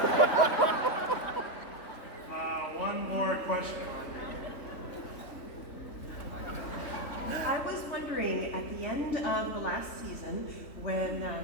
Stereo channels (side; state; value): right; late; 3.5 ms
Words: One more question. I was wondering, at the end of the last season, when